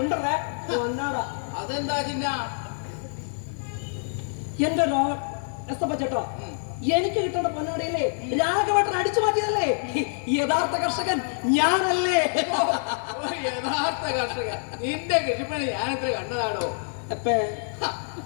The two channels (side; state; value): right; silent; digital silence